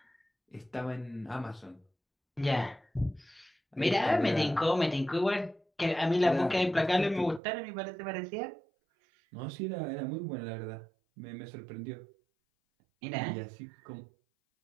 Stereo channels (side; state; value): left; drops out; at 7.4 s